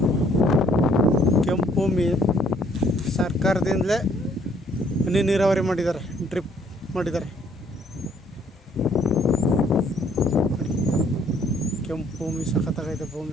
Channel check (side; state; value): both; normal; correlation 0.63